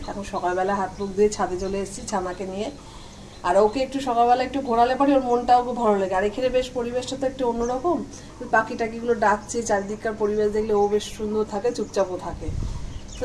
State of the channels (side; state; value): both; identical; correlation 1.00